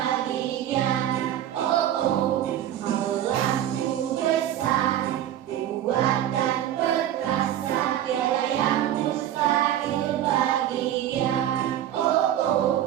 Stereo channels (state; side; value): quieter; left; 11.7 dB